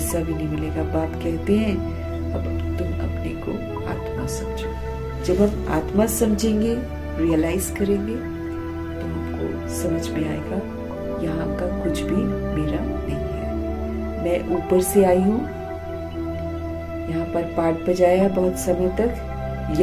भी नहीं मिलेगा। बाप कहते हैं अब तुम अपने को आत्मा समझो। जब हम आत्मा समझेंगे, रियलाइज करेंगे तो हमको समझ में आएगा यहाँ का कुछ भी मेरा नहीं है। मैं ऊपर से आई हूँ, यहाँ पर पाठ बजाया बहुत समय तक,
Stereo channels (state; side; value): identical; both; correlation 1.00